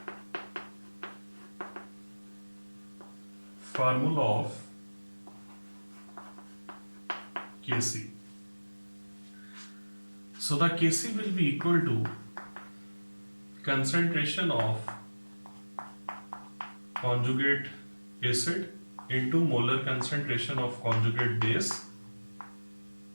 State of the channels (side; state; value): both; inverted; correlation -1.00